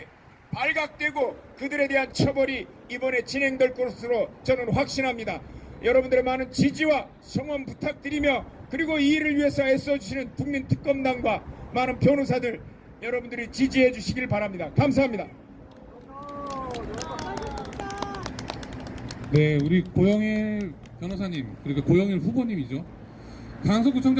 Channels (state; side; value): identical; both; correlation 1.00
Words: 발각되고 그들에 대한 처벌이 이번에 진행될 것으로 저는 확신합니다. 여러분들의 많은 지지와 성원 부탁드리며 그리고 이 일을 위해서 애써주시는 국민특검단과 많은 변호사들 여러분들이 지지해 주시길 바랍니다. 감사합니다. 네, 우리 고영일 변호사님 그리고 고영일 후보님이죠.